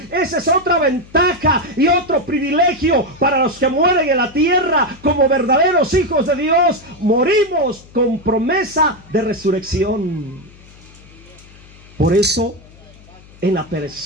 Esa es otra ventaja y otro privilegio para los que mueren en la tierra como verdaderos hijos de Dios. Morimos con promesa de resurrección. Por eso, en la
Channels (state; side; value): noise; left; hum, 23 dB below the sound